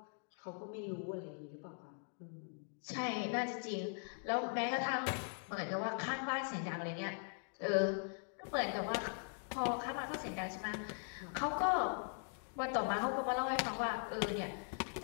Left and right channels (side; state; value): right; silent; 51 dB below the other